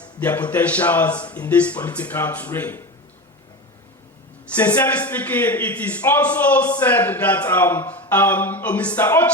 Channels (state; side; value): normal; both; correlation 0.25